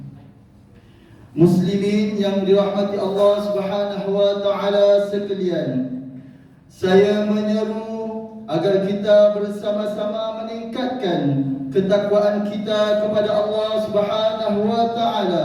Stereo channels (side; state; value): both; identical; correlation 1.00